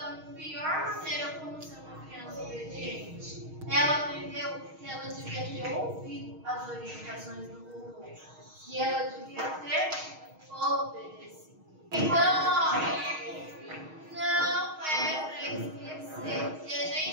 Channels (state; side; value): late; left; 6.4 ms